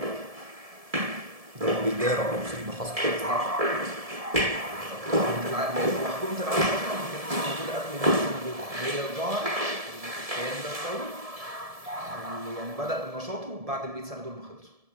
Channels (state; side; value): late; left; 1.7 ms